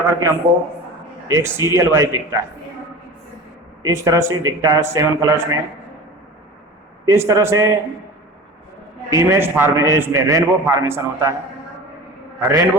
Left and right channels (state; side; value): normal; both; correlation 0.35